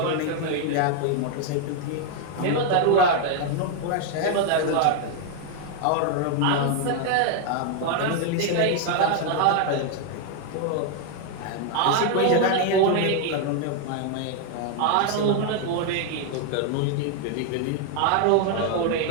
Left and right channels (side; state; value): both; different; correlation 0.00